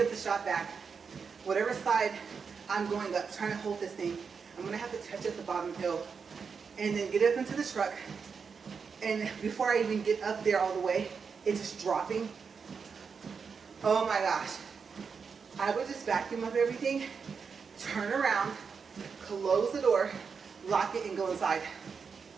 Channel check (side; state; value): left; quieter; 5.7 dB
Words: up the shop vac, whatever side I'm going up, trying to hold this thing, I'm gonna have to touch at the bottom hill and then get up into the truck, and before I even get up there all the way, it's just dropping. Oh my gosh. I would just vacuum up everything, turn around, close the door, lock it, and go inside.